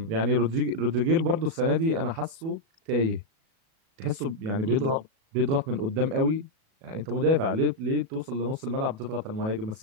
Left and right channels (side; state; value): left; late; 37 ms